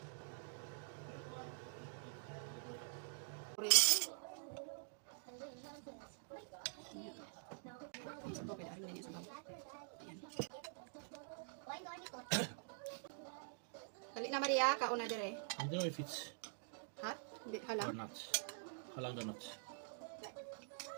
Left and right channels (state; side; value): silent; left; digital silence